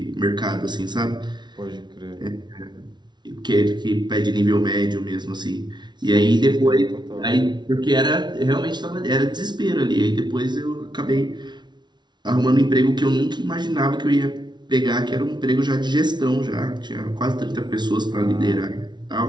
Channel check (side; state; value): left; late; 0.21 ms